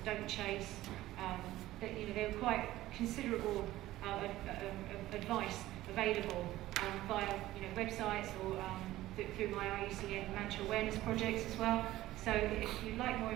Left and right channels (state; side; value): quieter; left; 15.8 dB